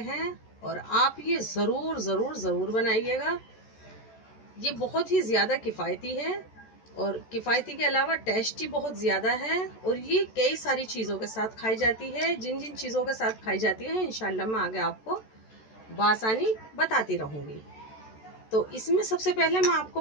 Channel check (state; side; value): late; right; 14 ms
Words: और आप ये ज़रूर ज़रूर ज़रूर बनाइएगा। ये बहुत ही ज़्यादा किफ़ायती है और किफ़ायती के अलावा टेस्टी बहुत ज़्यादा है और ये कई सारी चीज़ों के साथ खाई जाती है। जिन जिन चीज़ों के साथ खाई जाती है इंशाल्लाह मैं आगे आपको बआसानी बताती रहूँगी। तो इसमें सबसे पहले मैं आपको